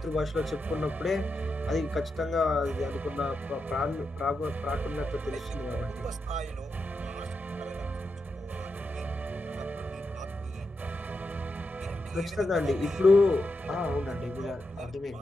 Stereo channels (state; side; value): normal; both; correlation 0.86